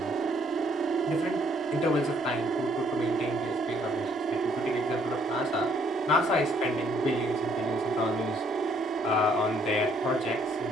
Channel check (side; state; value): both; normal; correlation 0.66